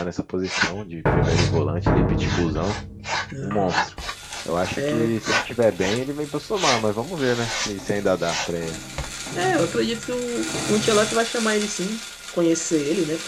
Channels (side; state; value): both; identical; correlation 1.00